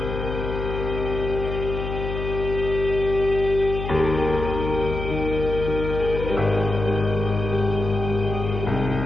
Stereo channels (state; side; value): noise; left; hum, 5 dB below the sound